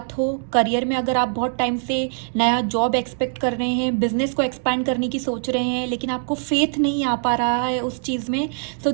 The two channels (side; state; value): left; silent; digital silence